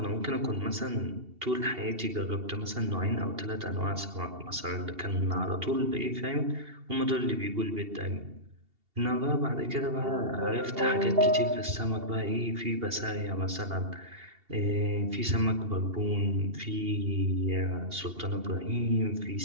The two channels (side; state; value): left; late; 2.8 ms